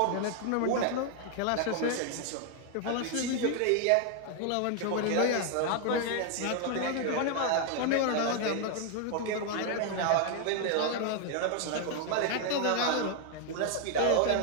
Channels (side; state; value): both; different; correlation 0.00